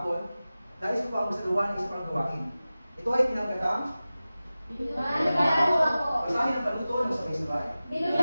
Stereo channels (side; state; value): both; inverted; correlation -0.96